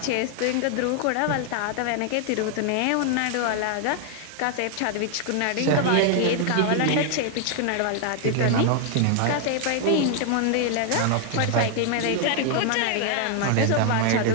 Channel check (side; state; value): both; different; correlation 0.00